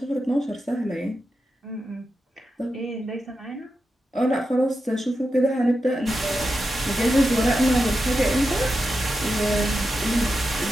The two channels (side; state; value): both; normal; correlation 0.89